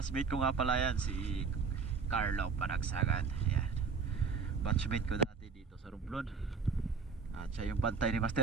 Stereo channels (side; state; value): left; quieter; 5.3 dB